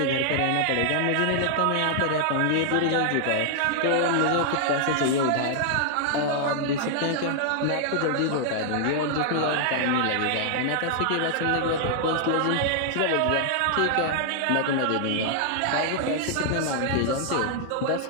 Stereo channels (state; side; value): different; both; correlation -0.01